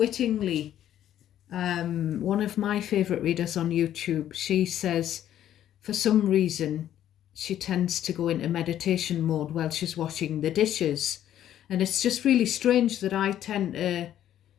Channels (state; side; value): quieter; right; 11.4 dB